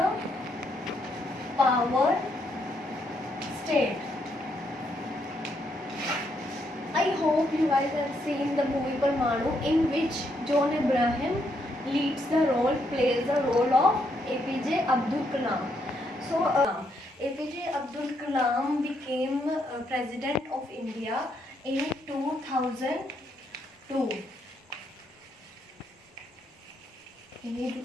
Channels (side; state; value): both; normal; correlation 0.76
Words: power state. I hope you guys have seen the movie Parmanu, in which John Abraham plays the role of A.P.J. Abdul Kalam. So, A.P.J. Abdul Kalam became President of India in 2002. He